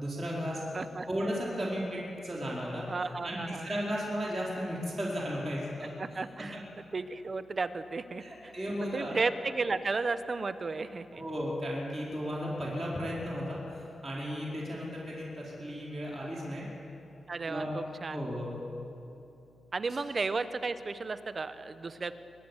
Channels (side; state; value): right; noise; hum, 29 dB below the sound